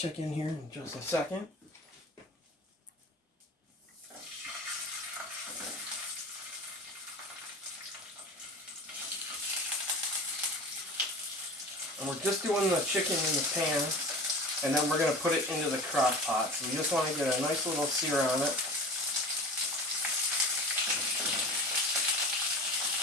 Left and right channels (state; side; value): normal; both; correlation 0.35